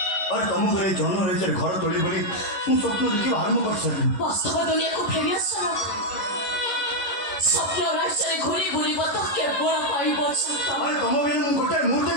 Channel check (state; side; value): late; right; 11 ms